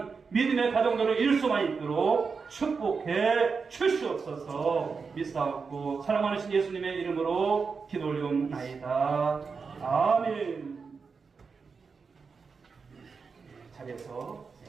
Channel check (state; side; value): quieter; left; 5.1 dB